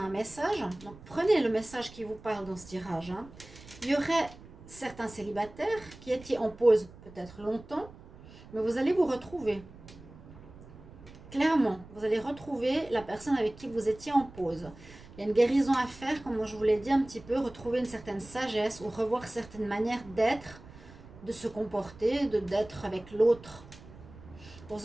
message. Donc prenez le message qui vous parle dans ce tirage. Il y aurait certains célibataires qui étaient en pause peut-être longtemps, mais vous allez vous retrouver. Clairement, vous allez retrouver la personne avec qui vous étiez en pause. Il y a une guérison à faire, comme je vous l'ai dit un petit peu, retrouver une certaine sagesse ou revoir certaines manières d'être, de se comporter, d'être avec l'autre.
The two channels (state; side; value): noise; right; rumble, 19 dB below the sound